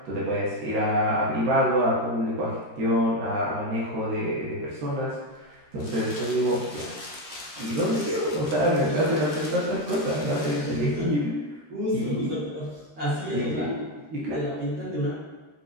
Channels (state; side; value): late; left; 13 ms